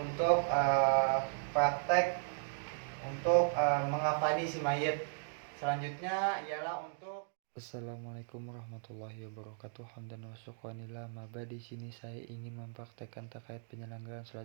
praktek untuk mengafani si mayit. Selanjutnya ialah untuk Assalamualaikum warahmatullahi wabarakatuh. Hamdan wa syukranillah. Maba di sini saya ingin mempraktekkan terkait penyelenggaraan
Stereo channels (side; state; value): left; silent; digital silence